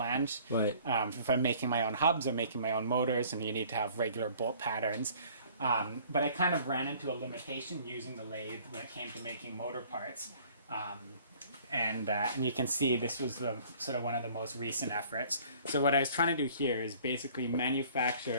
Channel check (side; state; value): both; inverted; correlation -0.53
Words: Right. If I'm making my own hubs or making my own motors, and you need to have regular bolt patterns. But I kind of ran into a limitation using the lathe when it came to making motor parts. And you can see this was sort of one of the most recent efforts. So what I was trying to do here is basically